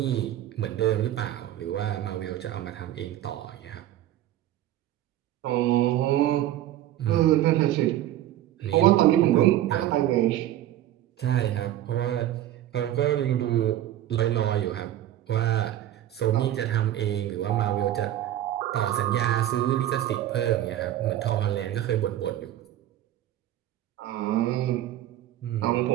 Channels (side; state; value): left; quieter; 12.8 dB